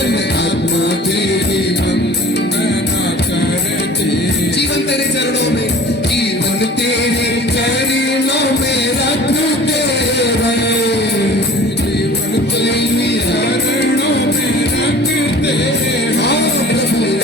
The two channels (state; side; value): normal; both; correlation 0.45